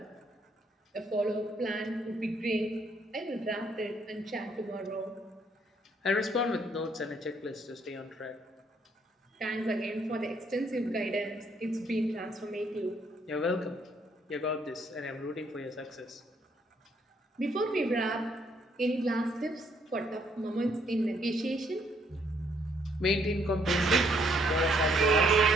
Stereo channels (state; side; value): normal; both; correlation 0.69